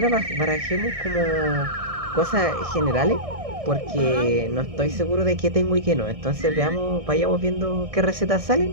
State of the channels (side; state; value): left; late; 1.6 ms